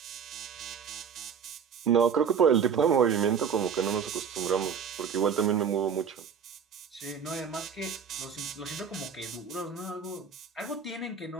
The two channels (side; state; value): left; quieter; 6.9 dB